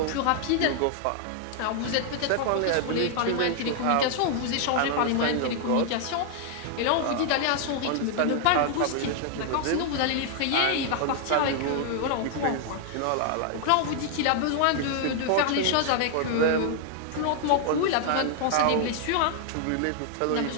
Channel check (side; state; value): both; different; correlation 0.00